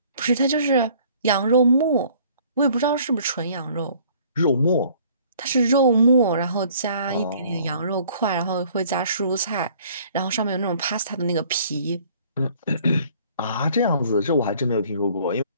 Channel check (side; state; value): both; inverted; correlation -0.56